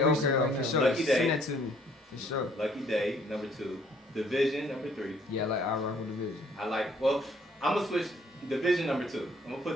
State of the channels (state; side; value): normal; both; correlation 0.62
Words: recent okay, right for now. sure. Lucky Day. Send that to me, for sure. Lucky Day, number 2. Division, number 3. Yeah, like I rock with the vision. I'm gonna switch Division number 2. I'm gonna